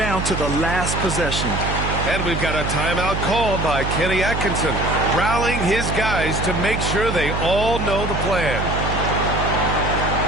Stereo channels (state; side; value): noise; right; hum, 3 dB below the sound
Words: to the last possession. And we've got a timeout called by Kenny Atkinson, rallying his guys to make sure they all know the plan.